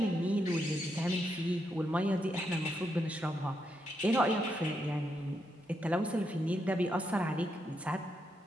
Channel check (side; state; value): both; normal; correlation 0.81